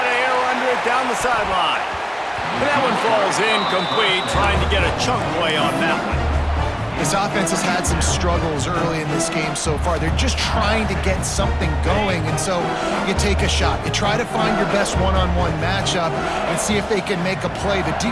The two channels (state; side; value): identical; both; correlation 1.00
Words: of air under it down the sideline. But that one falls incomplete, trying to get a chunk play on that one. This offense has had some struggles early in this game so far. They're just trying to get something going, and so you take a shot. You try to find your best one-on-one matchup and see if they can make a play. The